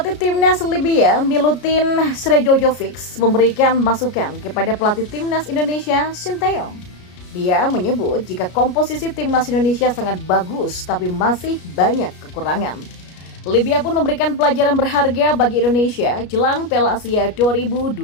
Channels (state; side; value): late; right; 33 ms